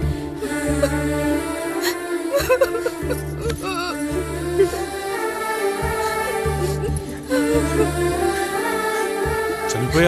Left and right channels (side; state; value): both; identical; correlation 1.00